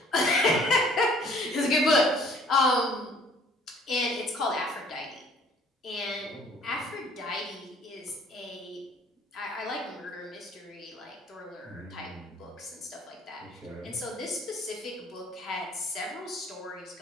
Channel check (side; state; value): both; normal; correlation 0.56